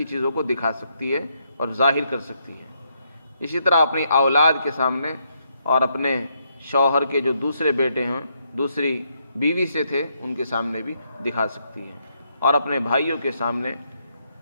چیزوں کو دکھا سکتی ہے اور ظاہر کر سکتی ہے۔ اسی طرح اپنی اولاد کے سامنے اور اپنے شوہر کے جو دوسرے بیٹے ہیں، دوسری بیوی سے تھے، ان کے سامنے بھی دکھا سکتی ہے، اور اپنے بھائیوں کے سامنے،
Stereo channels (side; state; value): both; inverted; correlation -0.76